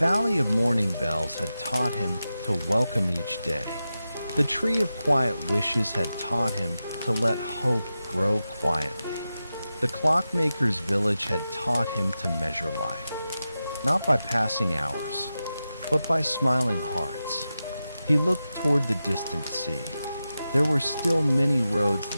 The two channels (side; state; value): both; inverted; correlation -0.92